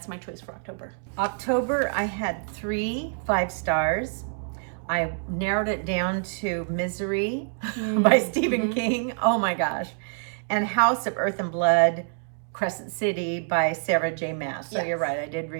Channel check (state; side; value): silent; left; 61 dB below the other